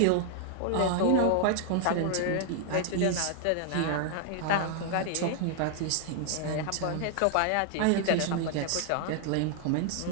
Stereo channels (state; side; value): different; both; correlation 0.00